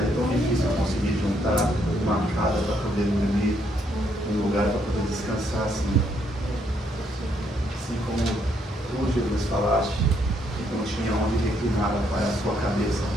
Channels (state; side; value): normal; both; correlation 0.72